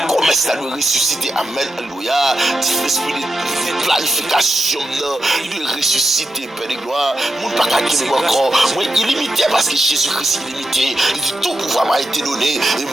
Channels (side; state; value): both; normal; correlation 0.87